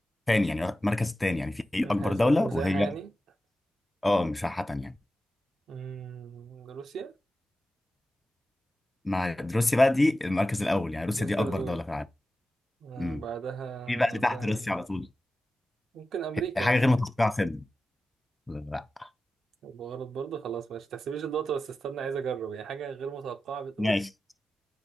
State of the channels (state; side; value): normal; both; correlation 0.94